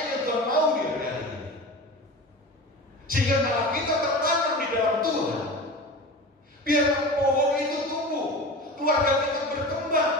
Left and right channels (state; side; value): normal; both; correlation 0.32